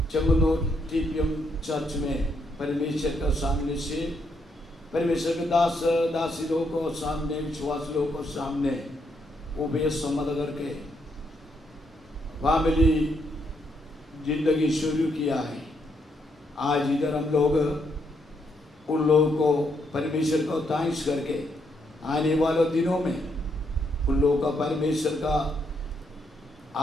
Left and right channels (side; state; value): both; normal; correlation 0.76